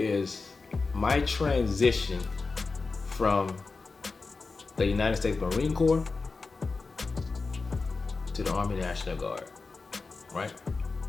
my transition from the United States Marine Corps to the Army National Guard, right?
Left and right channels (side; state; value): right; quieter; 4.1 dB